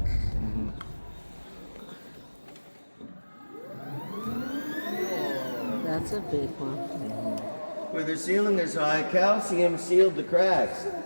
That's a big one. Where the ceiling is high, calcium sealed the cracks.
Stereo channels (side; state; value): both; inverted; correlation -1.00